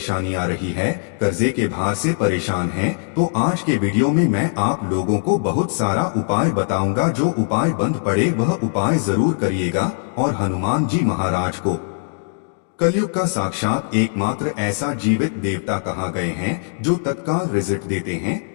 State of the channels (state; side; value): silent; right; digital silence